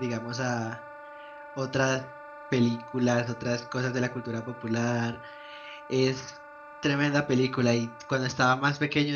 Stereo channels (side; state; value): both; identical; correlation 1.00